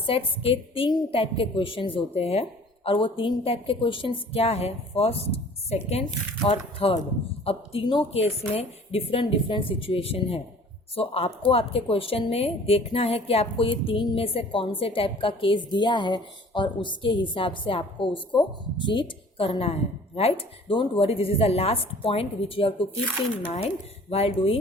के 3 टाइप के क्वेश्चंस होते हैं, और वो 3 टाइप के क्वेश्चंस क्या है, फर्स्ट, सेकेंड और थर्ड। अब तीनों केस में डिफरेंट सिचुएशन है, सो आपको आपके क्वेश्चन में देखना है कि आपको ये 3 में से कौन से टाइप का केस दिया है, और उसके हिसाब से आपको उसको ट्रीट करना है, right. Don't worry, this is the last point which you have to keep in mind while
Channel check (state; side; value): normal; both; correlation 0.49